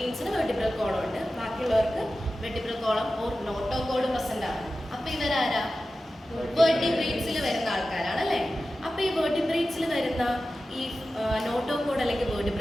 വെർട്ടിബ്രൽ കോളം ഉണ്ട്, ബാക്കിയുള്ളവർക്ക് vertebral column or notochord present ആണ്. അപ്പൊ ഇവരാരാ? വെർട്ടിബ്രേറ്റ്സിൽ വരുന്ന ആൾക്കാരാണ് അല്ലേ? അപ്പൊ ഈ വെർട്ടിബ്രേറ്റ്സിൽ വരുന്ന ഈ നോട്ടോകോഡ് അല്ലെങ്കിൽ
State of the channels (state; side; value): normal; both; correlation 0.94